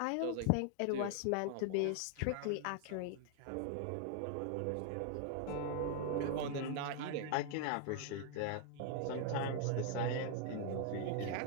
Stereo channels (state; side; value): different; both; correlation 0.00